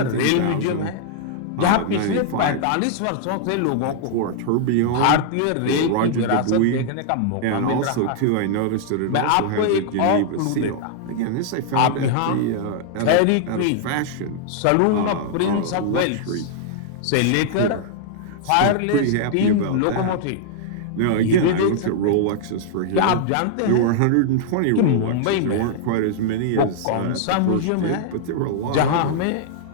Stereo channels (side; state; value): both; different; correlation -0.01